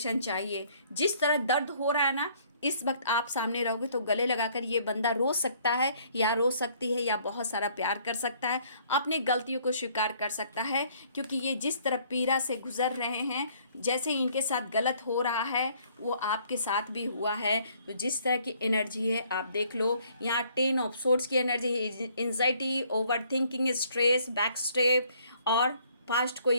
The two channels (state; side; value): inverted; both; correlation -0.62